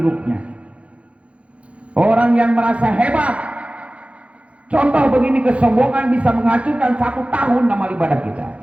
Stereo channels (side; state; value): left; late; 0.062 ms